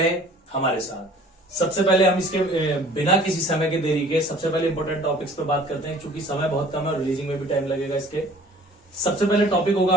हमारे साथ। सबसे पहले हम इसके बिना किसी समय के देरी के सबसे पहले इंपॉर्टेंट टॉपिक्स पे बात करते हैं, क्योंकि समय बहुत कम है, रिलीजिंग में भी टाइम लगेगा इसके। सबसे पहले टॉपिक होगा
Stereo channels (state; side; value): normal; both; correlation 0.51